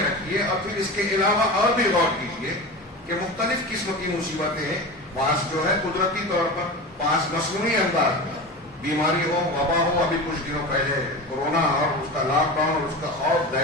رکھیے اور پھر اس کے علاوہ اور بھی غور کیجیے کہ مختلف قسم کی مصیبتیں، بعض جو ہے قدرتی طور پر، بعض مصنوعی انداز میں، بیماری ہو، وبا ہو، ابھی کچھ دنوں پہلے کورونا اور اس کا لاک ڈاؤن اور اس کا خوف،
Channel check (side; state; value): both; normal; correlation 0.29